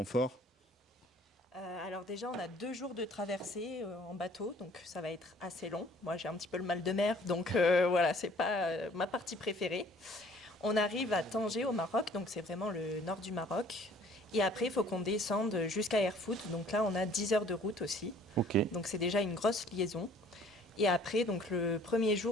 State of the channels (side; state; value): both; normal; correlation 0.55